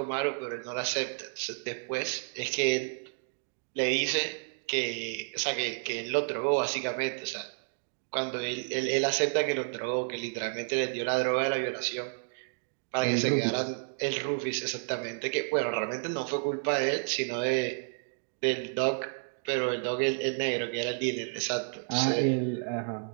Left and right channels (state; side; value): silent; left; digital silence